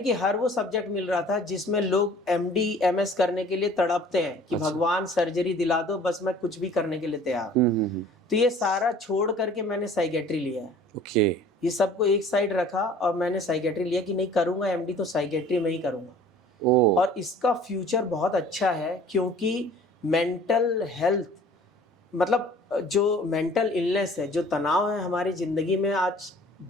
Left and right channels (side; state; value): both; normal; correlation 0.50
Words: कि हर वो सब्जेक्ट मिल रहा था जिसमें लोग MD MS करने के लिए तड़पते हैं कि भगवान सर्जरी दिला दो, बस मैं कुछ भी करने के लिए तैयार हूँ। तो ये सारा छोड़ करके मैंने साइकेट्री लिया है। ओके। ये सबको एक साइड रखा और मैंने साइकेट्री लिया कि नहीं, करूँगा MD तो साइकेट्री में ही करूँगा। और इसका फ्यूचर बहुत अच्छा है, क्योंकि मेंटल हेल्थ, मतलब जो मेंटल इलनेस है, जो तनाव है हमारी ज़िंदगी में आज